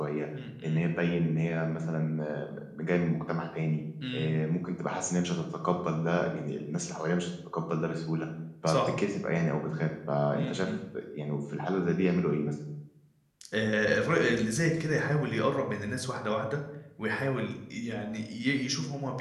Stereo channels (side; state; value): both; identical; correlation 1.00